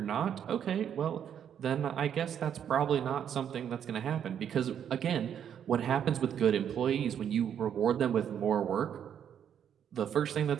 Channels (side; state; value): left; quieter; 8.9 dB